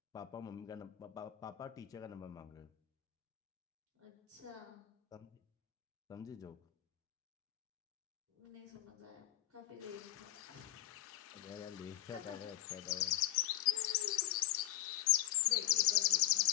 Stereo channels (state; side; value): quieter; right; 15.3 dB